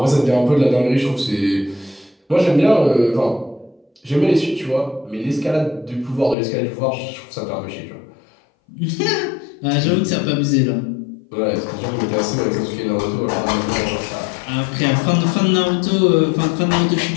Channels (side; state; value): right; drops out; at 6.4 s